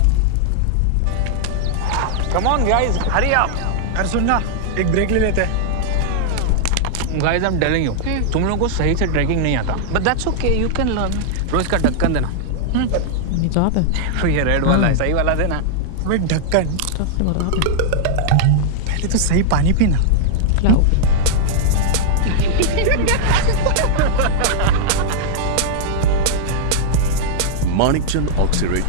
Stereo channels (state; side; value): different; both; correlation -0.01